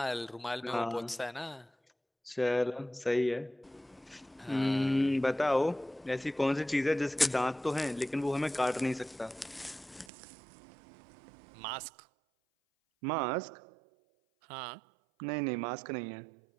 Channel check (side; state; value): left; drops out; at 10.1 s